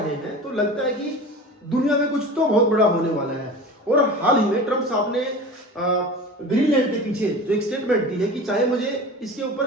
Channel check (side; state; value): both; normal; correlation 0.34